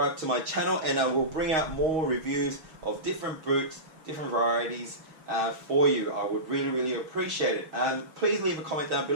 to my channel, and I will bring out more reviews of different boots, different varieties for you. I would really, really appreciate it. Please leave a comment down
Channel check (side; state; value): left; late; 6.3 ms